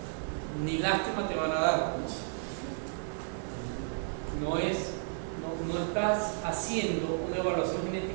ni lástima te van a dar. No estás haciendo una evaluación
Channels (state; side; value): silent; left; digital silence